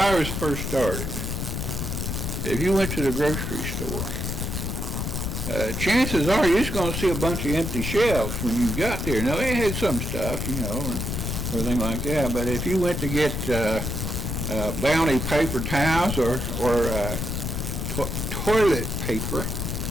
first started, if you went to the grocery store, chances are you're just going to see a bunch of empty shelves when you got there. Now, they had some stuff, and everything like that, but if you went to get Bounty paper towels or toilet paper,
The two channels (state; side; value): noise; left; rumble, 3 dB below the sound